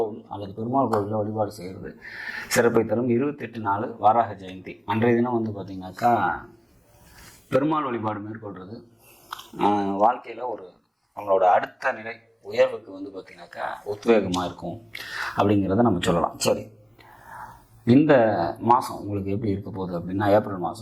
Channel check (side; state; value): both; identical; correlation 1.00